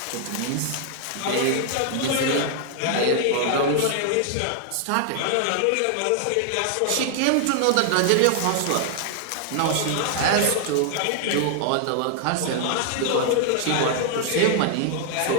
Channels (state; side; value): different; both; correlation 0.00